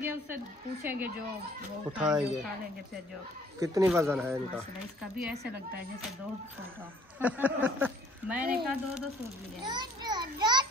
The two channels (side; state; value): both; normal; correlation 0.58